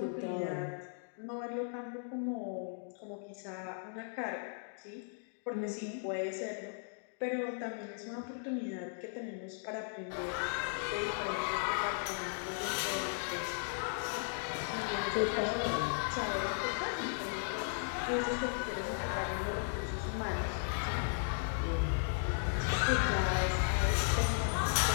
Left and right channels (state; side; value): silent; right; digital silence